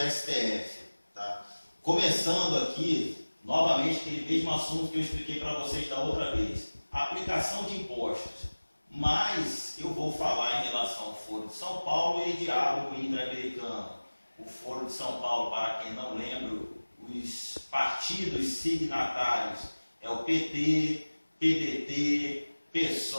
Tá? Começando aqui, novamente, aquele mesmo assunto que eu expliquei para vocês da outra vez. Aplicação de impostos. Mas eu vou falar em relação ao Foro de São Paulo e diálogo interamericano. O Foro de São Paulo, para quem não lembra, os partidos signatários é o PT, PDT,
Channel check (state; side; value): inverted; both; correlation -1.00